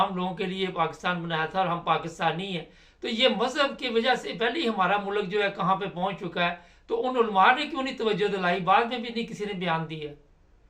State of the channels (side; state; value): both; identical; correlation 1.00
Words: लोगों के लिए पाकिस्तान बनाया था और हम पाकिस्तानी हैं, तो ये मजहब की वजह से पहले ही हमारा मुल्क जो है कहाँ पे पहुंच चुका है, तो उन उलमा ने क्यों नहीं तवज्जो दिलाई? बाद में भी नहीं किसी ने बयान दिया।